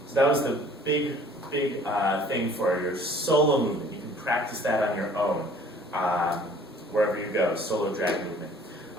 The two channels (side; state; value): both; normal; correlation 0.53